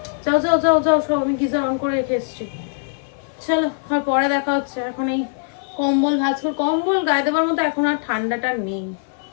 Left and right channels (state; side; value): silent; right; 56 dB below the other